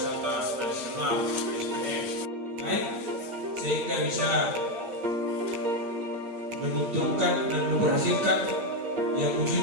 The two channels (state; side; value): late; left; 8.4 ms